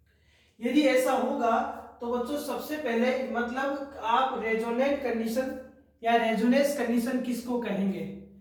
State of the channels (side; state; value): both; identical; correlation 1.00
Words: यदि ऐसा होगा तो बच्चों सबसे पहले मतलब आप रेजोनेंट कंडीशन या रेजोनेंस कंडीशन किसको कहेंगे,